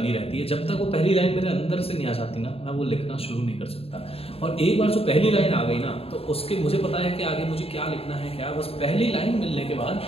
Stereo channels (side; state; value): right; late; 0.28 ms